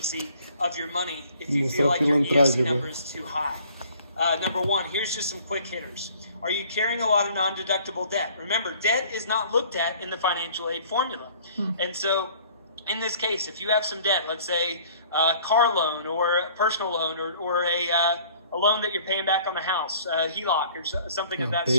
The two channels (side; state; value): both; inverted; correlation -0.54